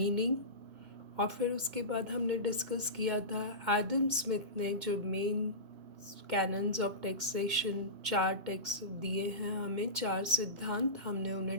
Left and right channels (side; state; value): left; late; 2.1 ms